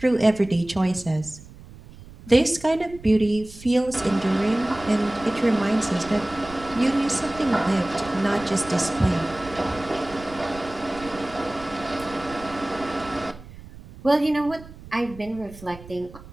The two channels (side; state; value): right; noise; rumble, 18 dB below the sound